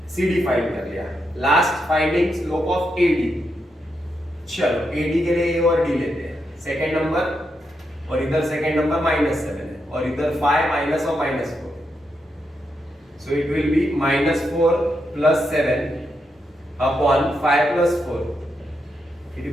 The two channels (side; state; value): both; normal; correlation 0.83